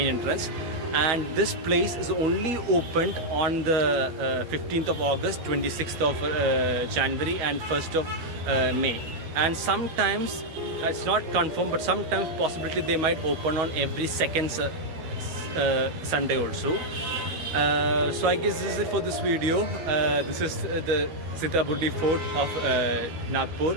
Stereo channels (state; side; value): late; left; 13 ms